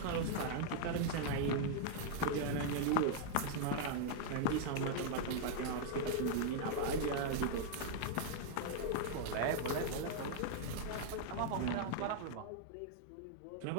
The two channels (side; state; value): both; different; correlation -0.01